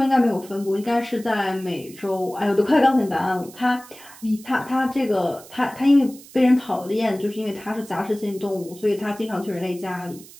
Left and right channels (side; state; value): right; noise; hiss, 20 dB below the sound